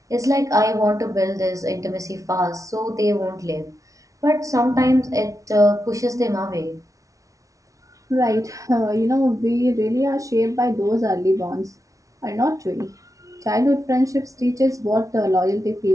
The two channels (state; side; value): late; left; 0.16 ms